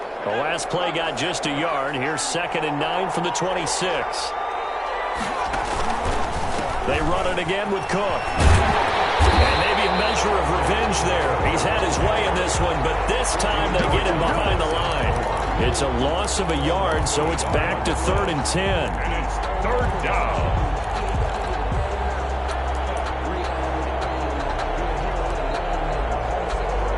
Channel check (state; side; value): identical; both; correlation 1.00